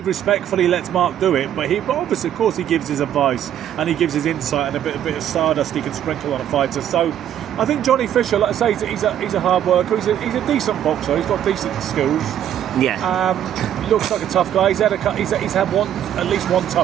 he respectfully lets Mark do it, but obviously, of course, he gives his advice and he gives his insight and a bit of stardust he can sprinkle on a fighter. So I think Johnny Fisher, like I say, he's a hard worker. He's a decent boxer. He's got decent skills. Looks like a tough guy. He's had at least one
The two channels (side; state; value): left; quieter; 10.5 dB